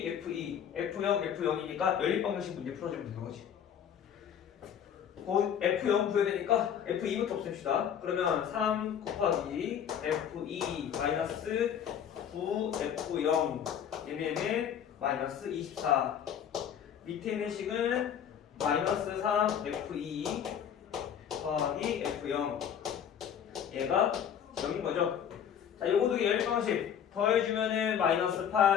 f0, f0이니까 연립방정식 문제 풀어주면 되는 거지. f0 구해야 되니까 f2부터 없앱시다. 그러면 3 곱하기 f2 마이너스 9 f0 얘네는 마이너스 24 밑에 있는 식은 마이너스 3 f2 더하기 f0 얘가 0인 거죠. 자, 요거 두 개 연립방식 더해주면은 마이너스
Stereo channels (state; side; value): quieter; right; 8.7 dB